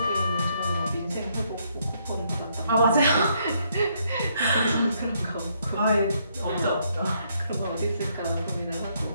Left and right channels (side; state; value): both; inverted; correlation -0.72